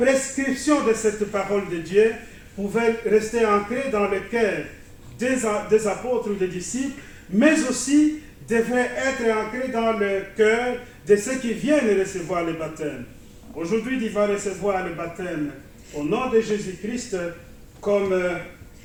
de cette parole de Dieu pouvait rester ancrée dans le cœur des apôtres ou des disciples, mais aussi devrait être ancrée dans le cœur de ceux qui viennent recevoir le baptême. Aujourd'hui, tu vas recevoir le baptême au nom de Jésus-Christ, comme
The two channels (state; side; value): identical; both; correlation 1.00